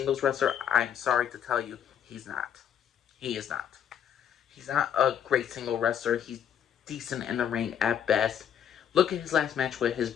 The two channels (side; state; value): right; quieter; 9.1 dB